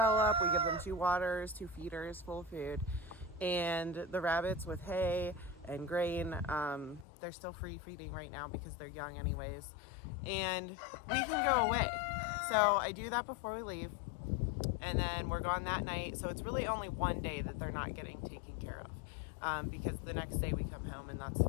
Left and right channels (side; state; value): right; drops out; at 7.1 s